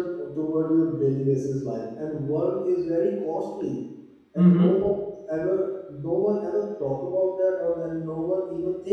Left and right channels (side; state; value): both; identical; correlation 1.00